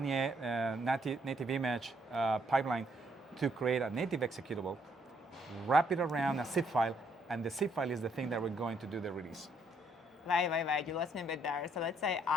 native image pipeline to create a native executable, wrap it around a zip file, and the zip file is the thing that we're going to do the release. Right. You lost me a bit there. So let's say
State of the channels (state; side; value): normal; both; correlation 0.70